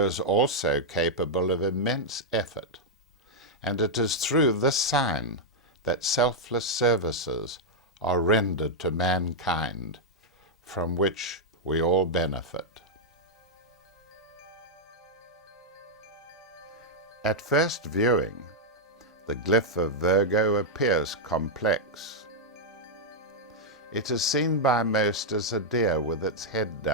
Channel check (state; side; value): normal; both; correlation -0.04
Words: is also capable of immense effort, and it is through this sign that selfless services are rendered to mankind, from which we all benefit. At first viewing, the glyph of Virgo appears complex. It is seen by most as a deer with its head